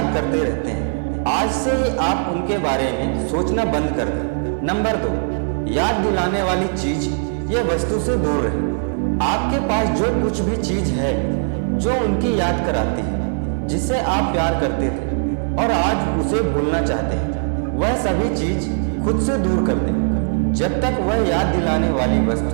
करते रहते हैं। आज से ही आप उनके बारे में सोचना बंद कर दें। नंबर 2, याद दिलाने वाली चीज या वस्तु से दूर रहें। आपके पास जो कुछ भी चीज है जो उनकी याद कराती है, जिससे आप प्यार करते थे और आज उसे भूलना चाहते हैं, वह सभी चीज खुद से दूर कर दें। जब तक वह याद दिलाने वाली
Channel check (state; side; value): silent; left; 59 dB below the other